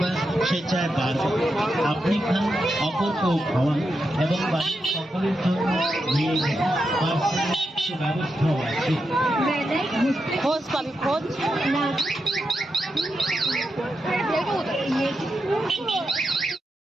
সে চায় বারবার। আপনি খান, অপরকেও খাওয়ান এবং বাড়ির সকলের জন্য নিয়ে যান। পার্সেলের সে ব্যবস্থাও আছে। খোঁজ পাবি, খোঁজ।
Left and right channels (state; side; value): normal; both; correlation 0.86